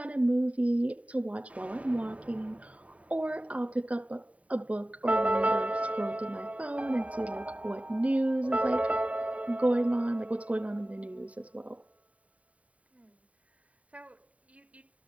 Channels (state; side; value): late; left; 0.067 ms